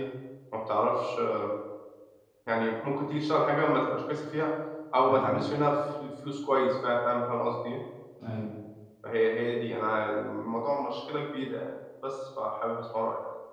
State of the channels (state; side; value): identical; both; correlation 1.00